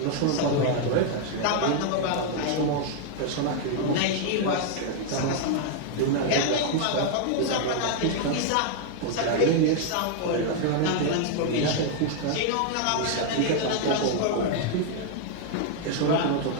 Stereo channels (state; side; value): different; both; correlation 0.00